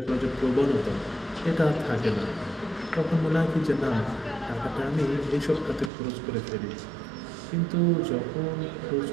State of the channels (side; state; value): left; drops out; at 5.9 s